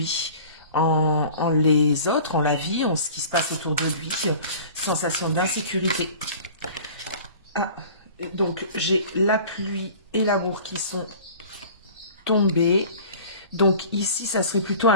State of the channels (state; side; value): inverted; both; correlation -0.43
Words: en les autres, en la vie, en ce qui se passe autour de lui, sensation d'insécurité. Ah, donc j'ai la pluie et l'amour qui sont tombés, donc ici, ça serait plutôt